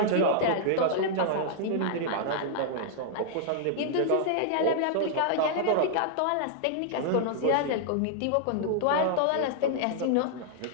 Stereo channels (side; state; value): both; different; correlation -0.01